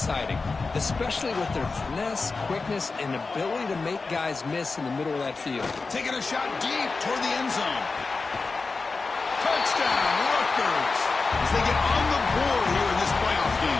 especially with their finesse, quickness, and ability to make guys miss in the middle of that field. Taking a shot deep toward the end zone. Touchdown, Rutgers, as they get on the board here in this playoff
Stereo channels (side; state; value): right; quieter; 4.1 dB